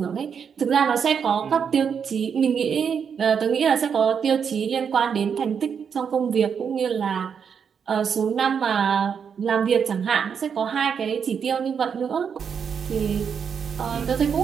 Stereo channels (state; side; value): quieter; left; 7.0 dB